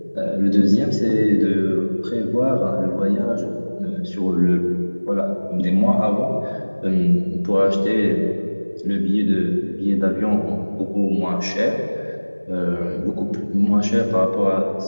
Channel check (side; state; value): both; inverted; correlation -1.00